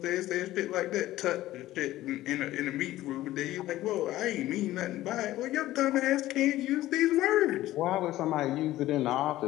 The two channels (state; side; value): quieter; right; 15.4 dB